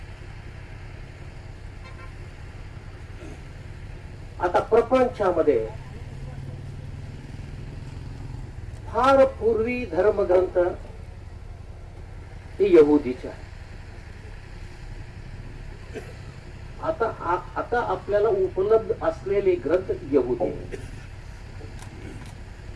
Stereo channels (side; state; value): both; identical; correlation 1.00